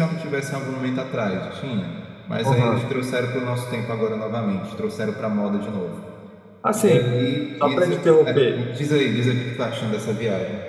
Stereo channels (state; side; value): identical; both; correlation 1.00